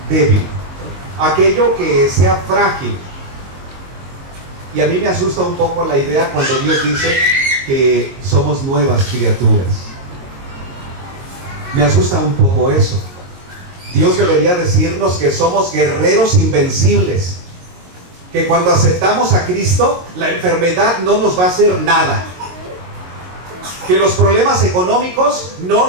débil, aquello que sea frágil. Y a mí me asusta un poco la idea cuando Dios dice que somos nuevas criaturas. Me asusta un poco eso. Dios debería decirnos que somos guerreros invencibles, que cuando aceptamos a Cristo, la enfermedad no nos va a hacer nada, que los problemas económicos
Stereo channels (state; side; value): late; left; 22 ms